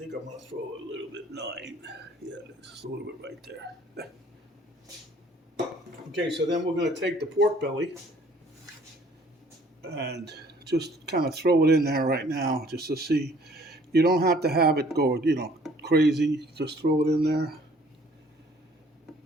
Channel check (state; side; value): normal; both; correlation 0.57